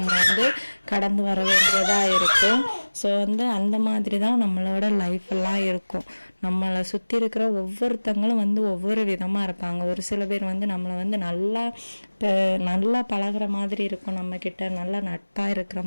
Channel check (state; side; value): inverted; both; correlation -1.00